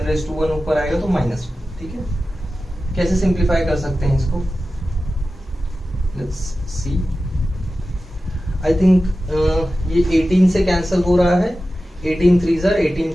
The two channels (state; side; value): normal; both; correlation 0.94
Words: ऊपर आएगा तो -1। ठीक है, कैसे सिंप्लीफाई कर सकते हैं इसको? Let's see. आई थिंक ये 18 से कैंसिल हो रहा है। 18 3s are 18